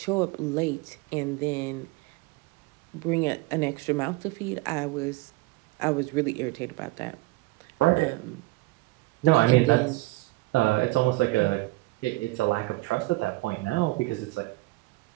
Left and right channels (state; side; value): quieter; left; 20.5 dB